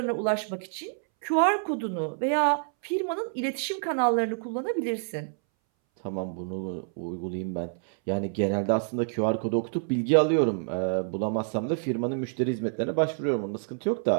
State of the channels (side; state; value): left; silent; 60 dB below the other